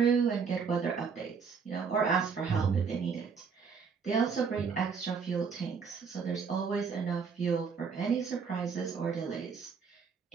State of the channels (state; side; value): quieter; left; 5.8 dB